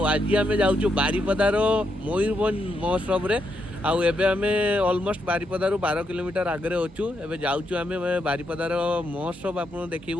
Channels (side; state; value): both; normal; correlation 0.80